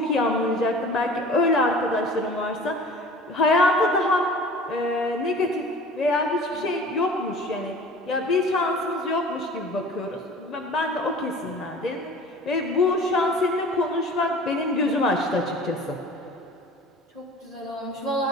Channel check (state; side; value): normal; both; correlation 0.43